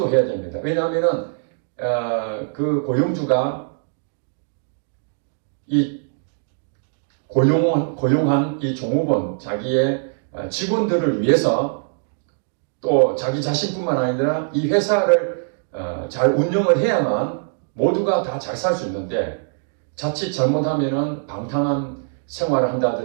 됩니다. 왜냐하면은 그 고용주가 이 고용한 이 종업원, 자기의 직원들을 위해서 또 자기 자신뿐만 아니라 이 회사를 잘 운영을 해야만 모두가 다 잘 살 수 있는데, 자칫 잘못하면은 방탕한 생활을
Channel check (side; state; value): left; silent; digital silence